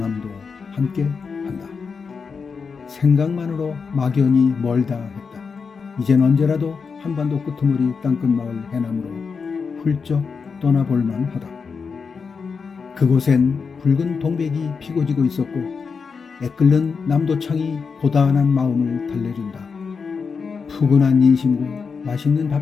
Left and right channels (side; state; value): right; quieter; 5.4 dB